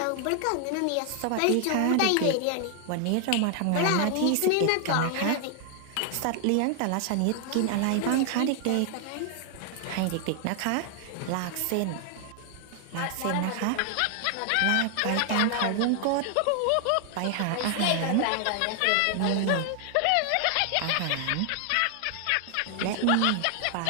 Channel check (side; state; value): both; different; correlation 0.00